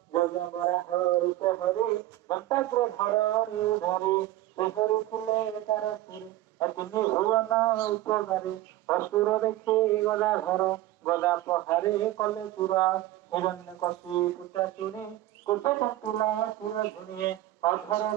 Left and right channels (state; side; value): quieter; left; 15.0 dB